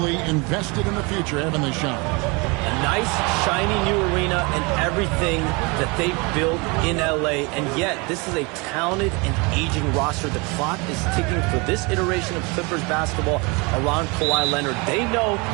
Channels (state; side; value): quieter; left; 28.2 dB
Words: invested in the future, haven't they, Sean? A nice, shiny new arena and everything that they built in LA. And yet, this is a talented and aging roster. The clock is ticking for this iteration of Clippers basketball around Kawhi Leonard. They know